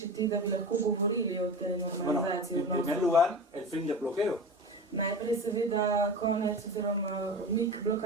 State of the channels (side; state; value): both; normal; correlation 0.30